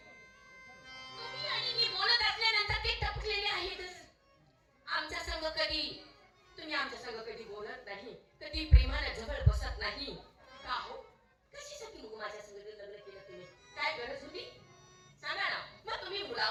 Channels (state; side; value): identical; both; correlation 1.00